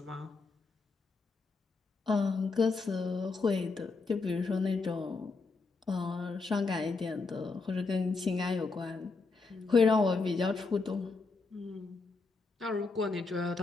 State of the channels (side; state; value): right; quieter; 4.1 dB